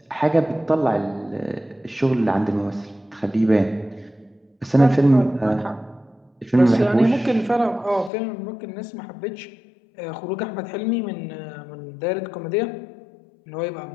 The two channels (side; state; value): right; drops out; at 8.1 s